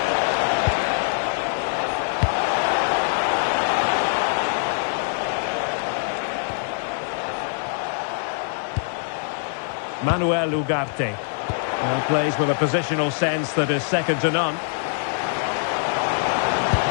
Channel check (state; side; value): silent; right; 63 dB below the other